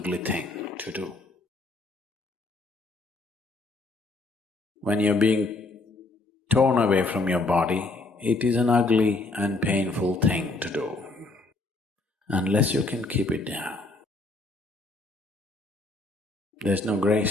thing to do. When you're being torn away from your body, it is an ugly and painful thing to do, unless you can keep it down. There's no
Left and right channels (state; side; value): quieter; right; 3.2 dB